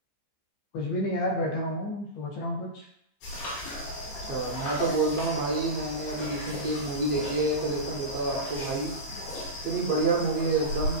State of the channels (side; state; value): right; late; 15 ms